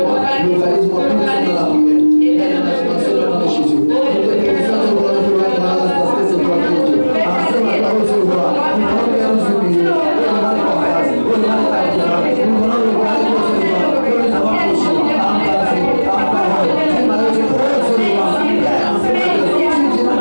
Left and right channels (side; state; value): both; inverted; correlation -1.00